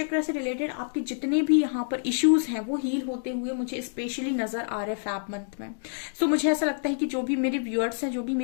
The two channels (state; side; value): silent; right; digital silence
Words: से रिलेटेड आपके जितने भी यहाँ पर इश्यूज हैं वो हील होते हुए मुझे स्पेशली नजर आ रहे फैब मंथ में। सो मुझे ऐसा लगता है कि जो भी मेरे व्यूअर्स हैं, जो भी